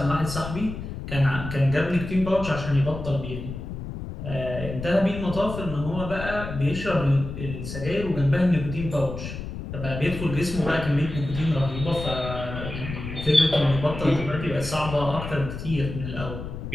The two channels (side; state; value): left; noise; rumble, 8 dB below the sound